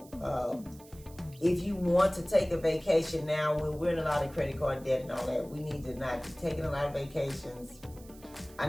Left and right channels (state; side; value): noise; right; hiss, 23 dB below the sound